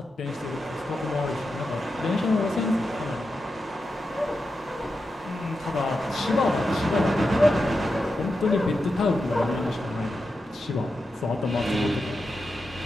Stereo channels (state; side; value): normal; both; correlation 0.89